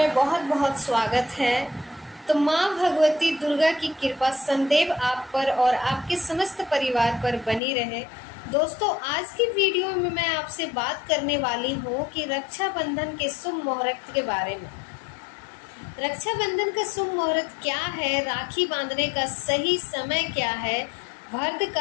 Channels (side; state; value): right; drops out; at 7.6 s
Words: बहुत बहुत स्वागत है। तो माँ भगवती दुर्गा की कृपा सदैव आप पर और आपके समस्त परिवार पर बनी रहे। दोस्तों, आज की वीडियो में मैं आपसे बात करने वाली हूँ कि रक्षाबंधन के शुभ मुहूर्त के बारे में। रक्षाबंधन का शुभ मुहूर्त क्या है, राखी बांधने का सही समय क्या है,